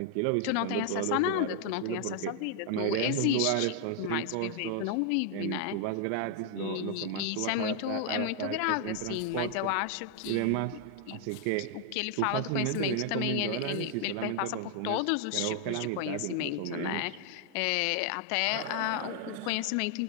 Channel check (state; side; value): different; both; correlation 0.00